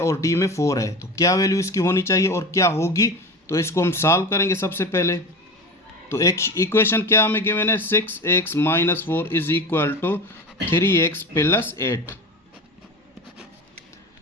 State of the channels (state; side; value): normal; both; correlation 0.29